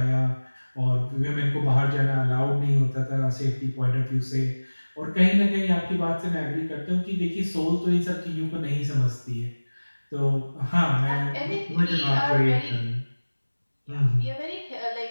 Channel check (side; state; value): both; inverted; correlation -1.00